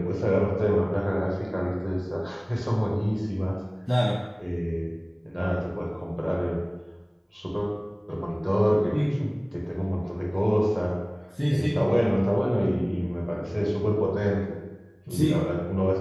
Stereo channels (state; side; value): identical; both; correlation 1.00